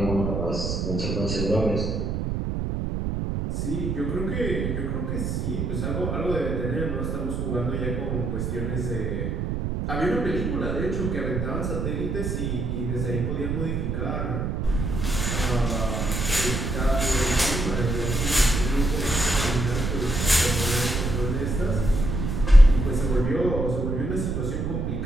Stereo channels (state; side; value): noise; right; rumble, 1 dB below the sound